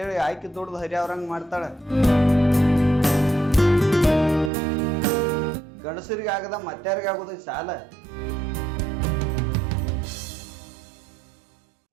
ಆಯ್ಕೆ ದುಡ್ದು ಹರಿ ಅವ್ರಂಗ್ ಮಾಡ್ತಾಳ. ಗಂಡಸರಿಗೆ ಆಗದ ಮತ್ತಾರಿಗೆ ಆಗುದೈತಿ ಸಾಲ.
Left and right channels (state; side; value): drops out; left; at 4.5 s